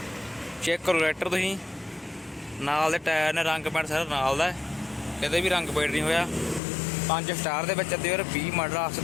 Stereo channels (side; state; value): right; drops out; at 6.6 s